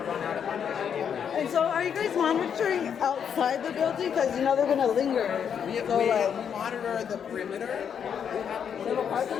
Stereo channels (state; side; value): quieter; right; 7.8 dB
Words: run out of money. And so are you guys monitoring outside the building? Because you know they're going to linger. We monitor the perimeter. We have a parking